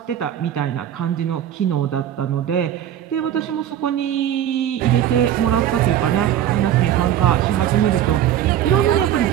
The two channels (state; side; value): quieter; left; 11.0 dB